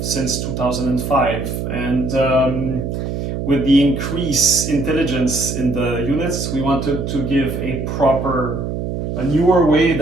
since 2005, and with the increased intelligence in the units, we wanted to give a newer way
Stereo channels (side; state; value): right; noise; hum, 4 dB below the sound